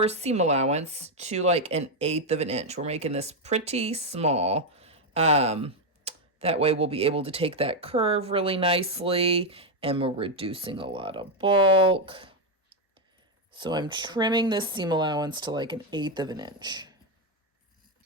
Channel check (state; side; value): normal; both; correlation 0.04